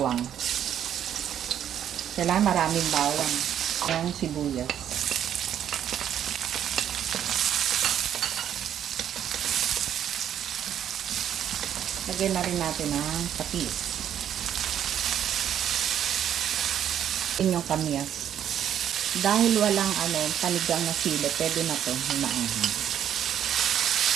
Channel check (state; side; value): quieter; left; 9.9 dB